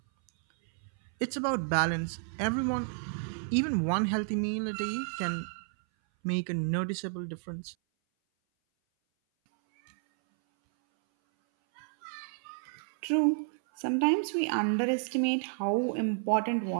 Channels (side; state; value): left; silent; 57 dB below the other